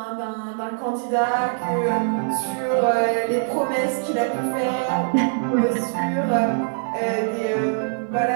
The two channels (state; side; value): silent; left; 64 dB below the other